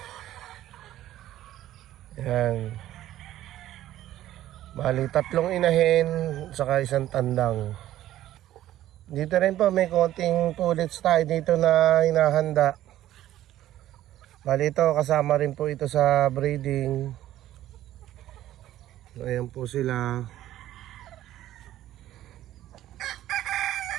Ayan, bali 3 inahin saka 1 tandang. Dito rin po may konting pullets tayo dito na hinahanda. Bali ito kasama rin po ito sa breeding. Ayan po sila.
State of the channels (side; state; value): left; quieter; 13.4 dB